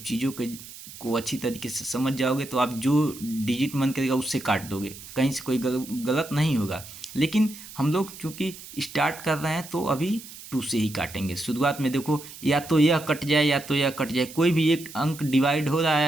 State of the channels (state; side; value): noise; right; hiss, 15 dB below the sound